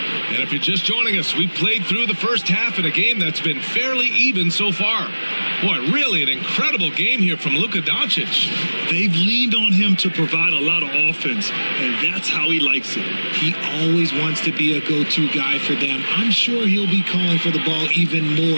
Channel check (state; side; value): inverted; both; correlation -1.00